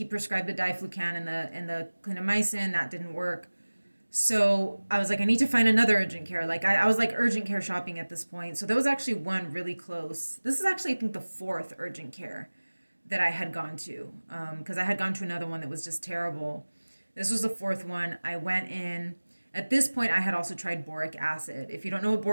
prescribed the diflucan and the clindamycin. That didn't work. So I was like, I need to find another urgent care. Like I was like urgent care shopping at this point. So there was actually one really close. This is actually, I think, the fourth urgent care that I had gone to, because I had gone to another one that was just terrible. This was the fourth one. I went in. At this point, I had also tried boric acid. If you don't know what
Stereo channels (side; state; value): both; inverted; correlation -1.00